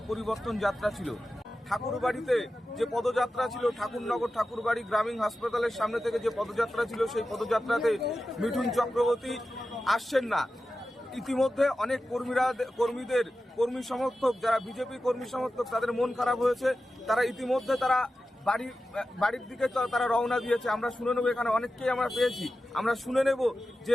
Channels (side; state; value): both; normal; correlation 0.93